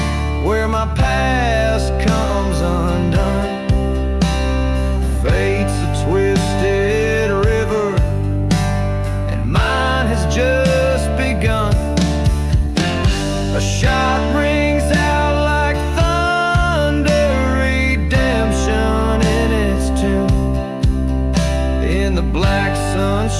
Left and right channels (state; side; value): identical; both; correlation 1.00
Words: where my past comes undone. Fate's a twisted river, and mine has just begun. A shot rings out like thunder, redemption in its tune. In the black sun's